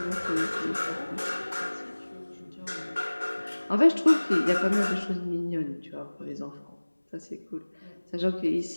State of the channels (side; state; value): both; inverted; correlation -1.00